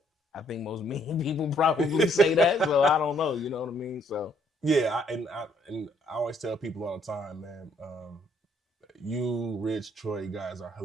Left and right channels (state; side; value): normal; both; correlation 0.67